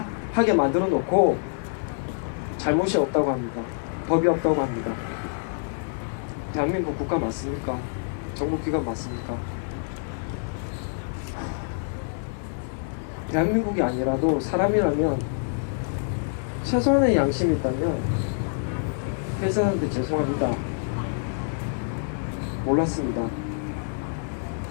하게 만들어 놓고 잘못이 없다고 합니다. 법이 없다고 합니다. 대한민국 국가 맞습니까? 정부기관 맞습니까? 대한민국이 아니라도 사람이라면 최소한의 양심이 있다면 회사한테 죄송합니다. 몰랐습니다.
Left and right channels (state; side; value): silent; right; digital silence